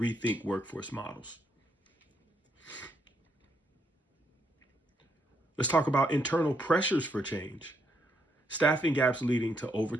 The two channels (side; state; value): both; normal; correlation 0.76